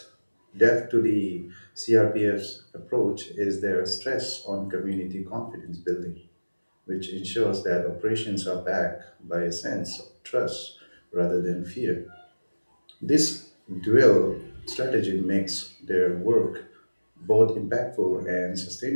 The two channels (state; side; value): inverted; both; correlation -1.00